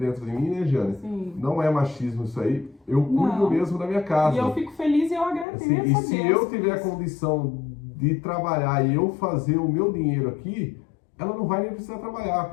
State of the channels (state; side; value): drops out; right; at 5.5 s